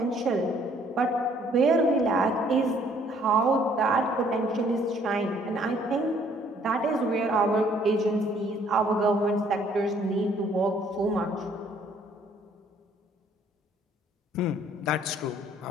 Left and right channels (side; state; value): both; normal; correlation 0.62